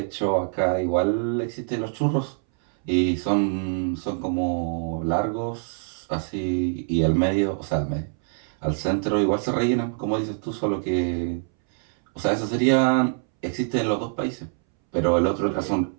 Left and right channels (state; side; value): silent; left; 62 dB below the other